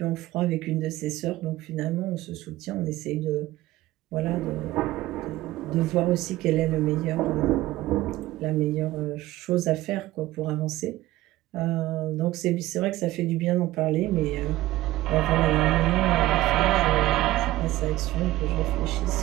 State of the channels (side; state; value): left; quieter; 16.6 dB